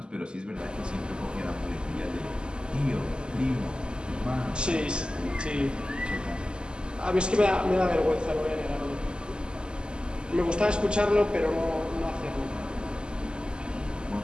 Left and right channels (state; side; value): late; left; 0.048 ms